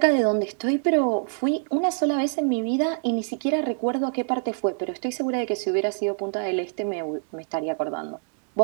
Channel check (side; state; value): left; silent; digital silence